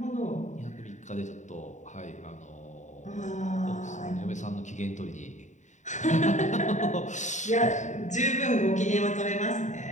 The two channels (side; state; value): right; late; 0.35 ms